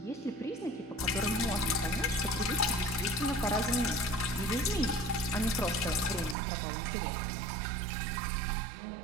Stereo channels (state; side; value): drops out; left; at 6.4 s